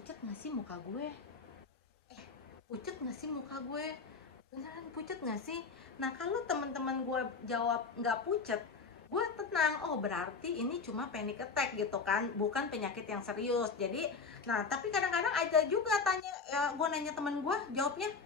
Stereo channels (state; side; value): quieter; right; 4.9 dB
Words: nggak sih muka gue, pucet nggak sih muka gue, beneran pucet nggak sih? Nah, kalau teman-teman gue jawab nggak pucet, gue tenang, oh berarti ini cuma panic attack gitu kan, bukan penyakit yang serius. Jadi, nah tapi kadang-kadang ada juga tanya, gue nanya teman gue, jawabnya